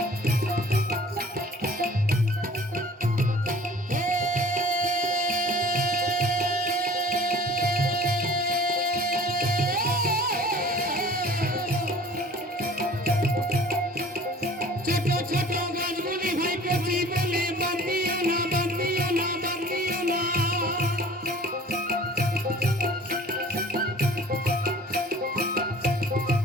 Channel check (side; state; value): both; normal; correlation 0.48